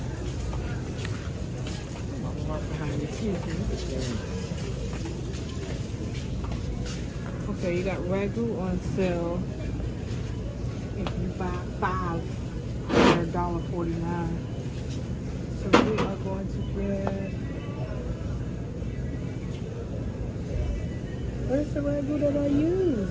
Okay, you got Ragu on sale. If you buy 5, they're $1.49. So we are going to get. Where's the Ragu that I use?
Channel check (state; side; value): identical; both; correlation 1.00